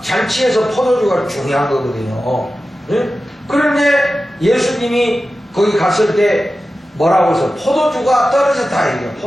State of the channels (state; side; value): normal; both; correlation 0.94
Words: 잔치에서 포도주가 중요한 거거든요. 예? 그런데 예수님이 거기 갔을 때 뭐라고 해서 포도주가 떨어졌다. 이게